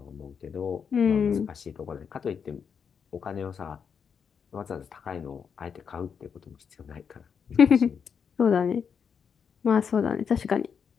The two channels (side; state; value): right; quieter; 6.8 dB